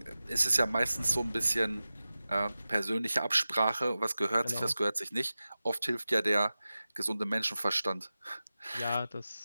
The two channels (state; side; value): inverted; both; correlation -0.95